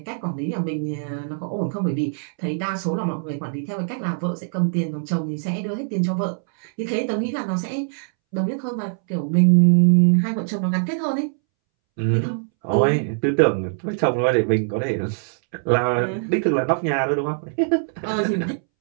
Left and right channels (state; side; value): silent; left; 64 dB below the other